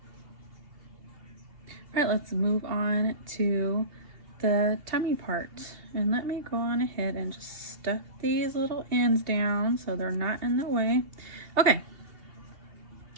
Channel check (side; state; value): left; late; 2.7 ms